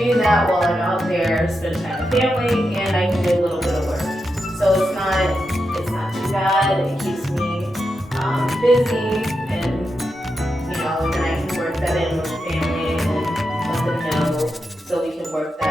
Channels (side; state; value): both; normal; correlation 0.87